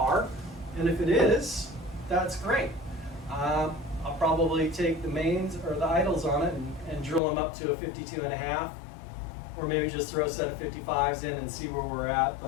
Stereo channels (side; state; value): right; drops out; at 7.2 s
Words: And if it is, that's great. I'll probably take the mains or the idles on it and drill them up to a 52.5, or maybe just throw a set of 55s in and see where we're at.